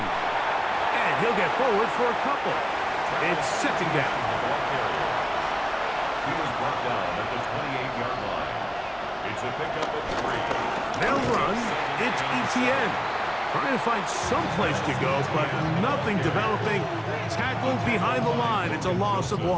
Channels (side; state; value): both; identical; correlation 1.00